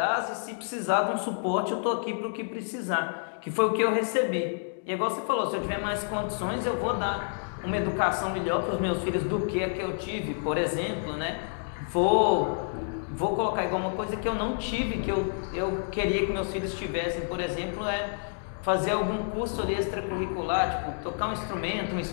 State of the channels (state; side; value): silent; right; digital silence